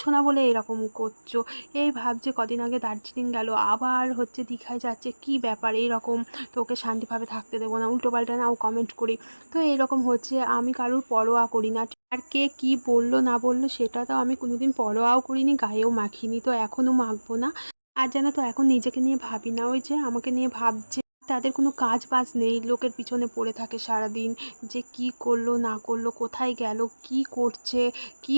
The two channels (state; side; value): inverted; both; correlation -1.00